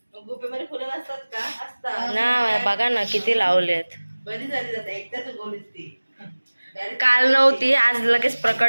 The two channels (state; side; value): inverted; both; correlation -1.00